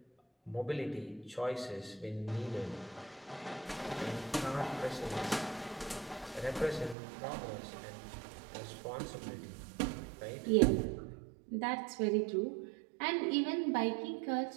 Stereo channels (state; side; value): drops out; left; at 7.0 s